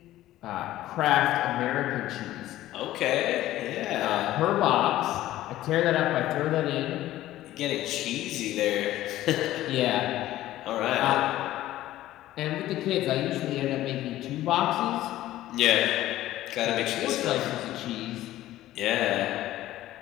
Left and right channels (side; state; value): right; quieter; 14.7 dB